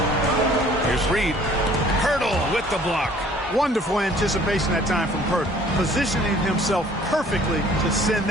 Here's Reed. Poeltl with the block. Wonderful anticipation that time from Poeltl, positioning himself perfectly to send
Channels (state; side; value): normal; both; correlation 0.55